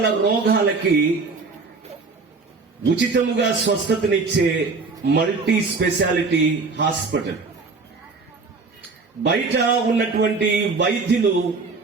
రోగాలకి ఉచితముగా స్వస్థతనిచ్చే మల్టీ స్పెషాలిటీ హాస్పిటల్. బయట ఉన్నటువంటి వైద్యులు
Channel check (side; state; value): left; quieter; 4.2 dB